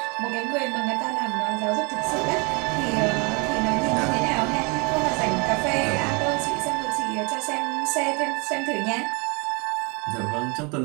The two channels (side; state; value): left; quieter; 30.6 dB